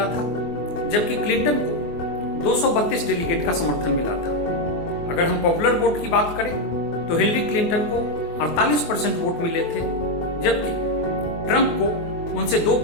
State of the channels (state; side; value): late; right; 24 ms